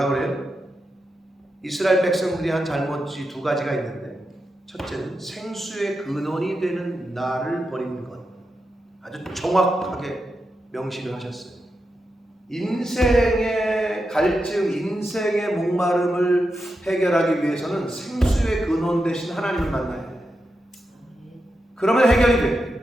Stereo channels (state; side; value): normal; both; correlation 0.88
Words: 그래요? 이스라엘 백성들이 한 잘못이 두 가지가 있는데, 첫째는 생수의 근원이 되는 나를 버리는 것. 아주 정확하게 명시를 하셨어요. 인생의 갈증, 인생의 목마름을 해결하기 위해서는 생수의 근원 대신 하나님을 만나야 돼요. 그러면 해결이 돼요.